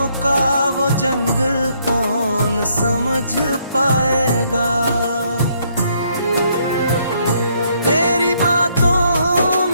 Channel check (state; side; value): inverted; both; correlation -0.70